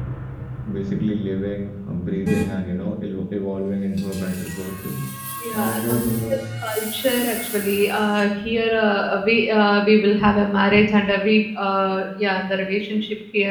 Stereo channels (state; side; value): identical; both; correlation 1.00